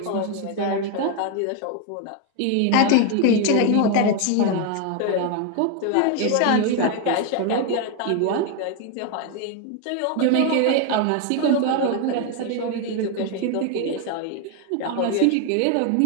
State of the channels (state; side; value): different; both; correlation 0.01